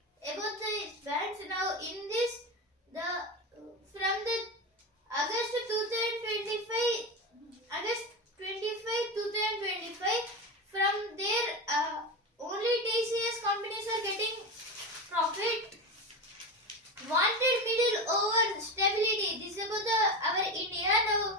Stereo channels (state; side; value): normal; both; correlation 0.20